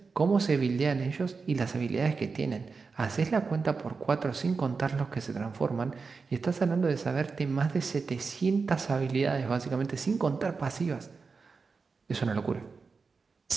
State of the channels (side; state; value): left; quieter; 4.7 dB